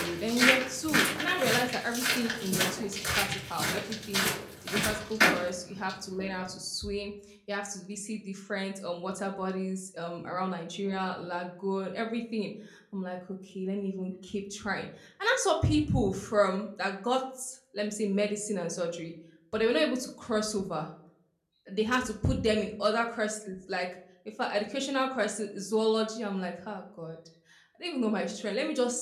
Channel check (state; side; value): identical; both; correlation 1.00